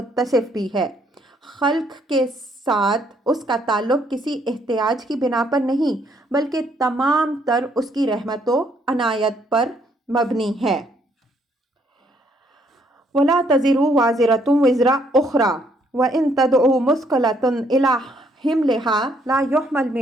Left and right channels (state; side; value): normal; both; correlation 0.69